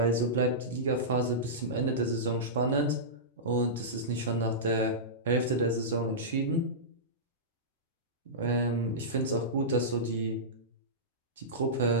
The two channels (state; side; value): normal; both; correlation -0.16